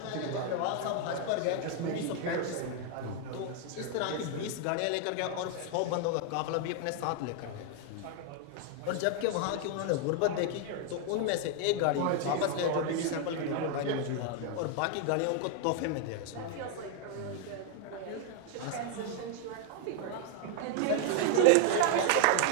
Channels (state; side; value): different; both; correlation 0.00